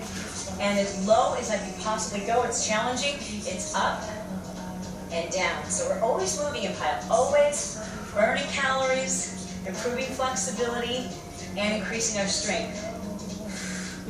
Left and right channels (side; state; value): both; identical; correlation 1.00